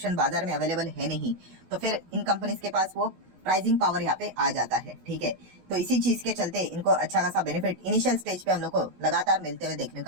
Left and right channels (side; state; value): left; late; 16 ms